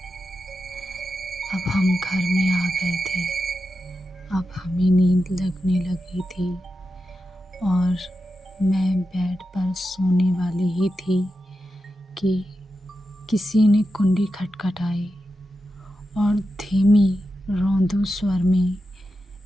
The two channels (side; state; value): both; normal; correlation 0.90